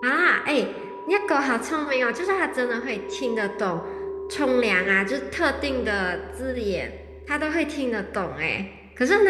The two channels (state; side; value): identical; both; correlation 1.00